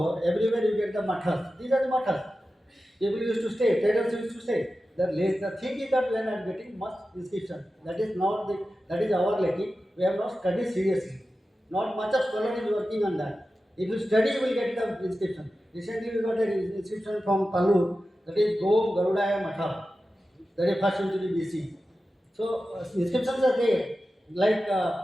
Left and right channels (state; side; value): normal; both; correlation 0.93